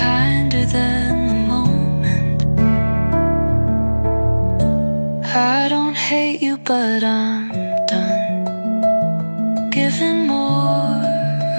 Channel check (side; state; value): both; inverted; correlation -1.00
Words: than the moment. I don't hate you, but I'm done giving more